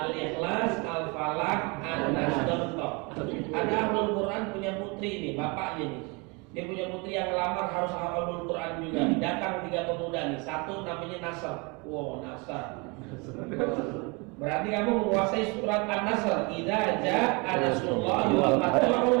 Al-Falaq, An-Nas, contoh. Ada ahlul Quran punya putri nih, bapaknya nih. Dia punya putri yang lamar harus hafal Quran juga. Datang 3 pemuda nih. 1 namanya Nasr. Wow, Nasr. Berarti kamu menguasai surat An-Nasr. Idza jaa nasrullahi wal fath. Kamu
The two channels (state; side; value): quieter; left; 29.4 dB